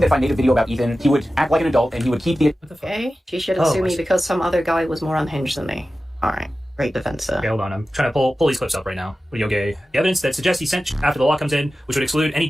I made a video about Ethan, he would act like an adult and he would keep the. Okay, she shouldn't sue me because some other guy was more unhinged than me. All right, great defense, sir. Okay, hold on. I'm trying to pull these clips up right now. Yoge, the evidence that suggests he sent after the law comes in, which would exclude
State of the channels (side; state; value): both; normal; correlation 0.94